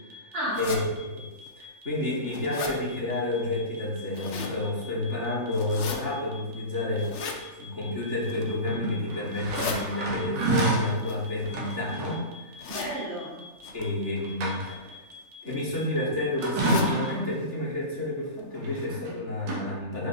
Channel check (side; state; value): left; late; 3.4 ms